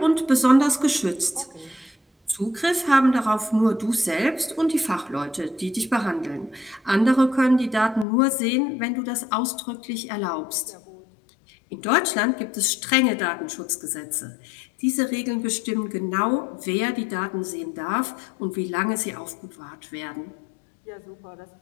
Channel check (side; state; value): right; drops out; at 8.1 s